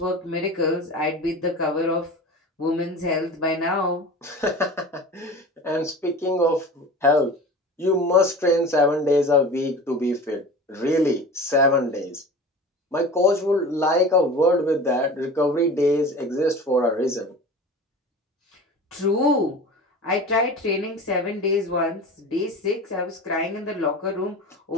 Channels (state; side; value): normal; both; correlation 0.35